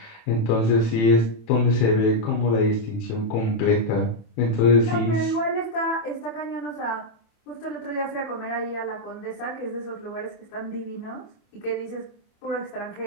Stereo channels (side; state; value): right; late; 27 ms